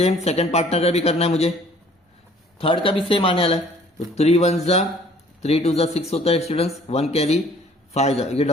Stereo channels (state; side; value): normal; both; correlation 0.55